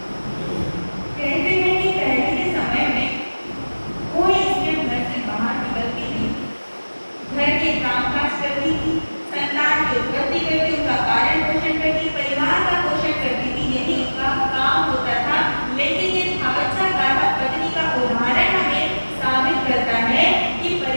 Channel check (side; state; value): both; inverted; correlation -1.00